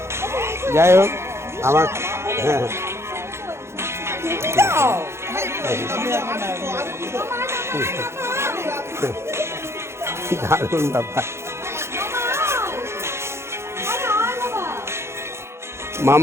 যাই হোক আমার, হ্যাঁ দারুণ ব্যাপার।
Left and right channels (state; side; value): late; left; 0.13 ms